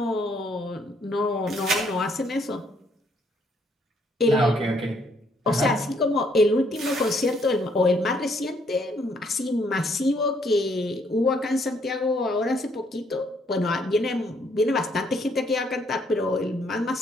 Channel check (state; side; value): normal; both; correlation 0.69